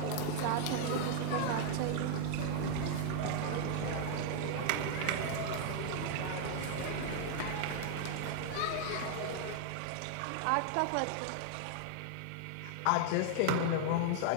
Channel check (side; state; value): both; different; correlation 0.00